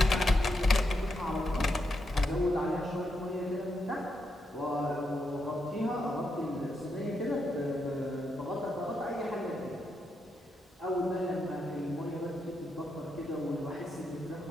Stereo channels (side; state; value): both; normal; correlation 0.83